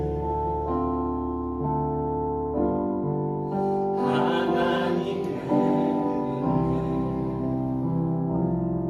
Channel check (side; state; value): both; identical; correlation 1.00